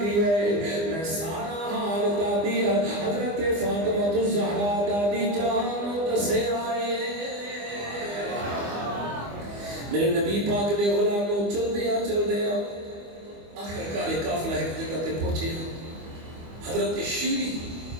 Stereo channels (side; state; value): left; late; 25 ms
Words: گیا ہے، میں سارا حال دادی حضرت فاطمہ الزہرا دادی جان دسے آئے۔ میرے نبی پاک دے غلاموں چل دیا آخر کار قافلہ ایک جگہ تے پہنچے، حضرت شیری